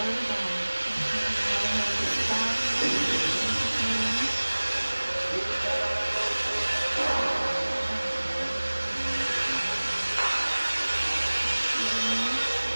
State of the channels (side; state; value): both; inverted; correlation -1.00